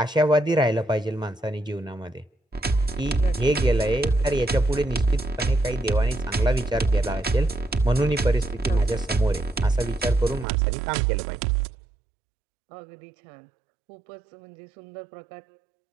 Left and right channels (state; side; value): drops out; left; at 10.5 s